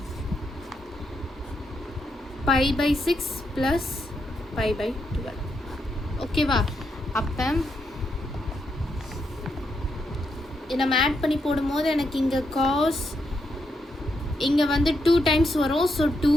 pi by 6 plus pi by 12. ஓகேவா? அப்போ நம்ம ஆட் பண்ணி போடும்போது எனக்கு இங்கே காஸ் இங்கே வந்து 2 டைம்ஸ் வரும். So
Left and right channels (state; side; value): normal; both; correlation 0.81